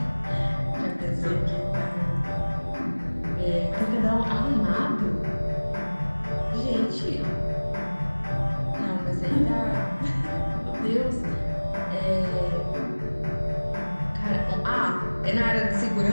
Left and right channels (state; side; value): inverted; both; correlation -1.00